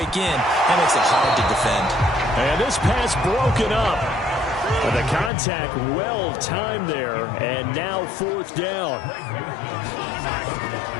in. That makes it hard to defend. And this pass broken up. The contact well timed there, and now 4th down.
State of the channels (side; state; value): right; drops out; at 5.3 s